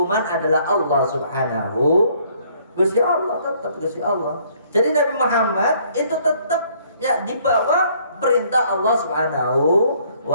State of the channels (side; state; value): both; inverted; correlation -0.63